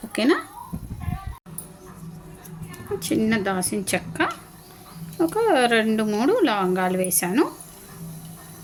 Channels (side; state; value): both; identical; correlation 1.00